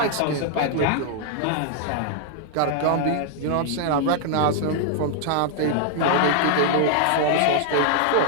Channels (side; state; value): both; different; correlation 0.00